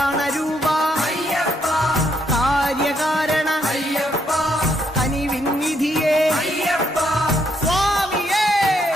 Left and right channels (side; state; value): both; normal; correlation 0.74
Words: രൂപ അയ്യപ്പ കാര്യകാരണ അയ്യപ്പ കനിവിന്നിധിയേ അയ്യപ്പ സ്വാമിയേ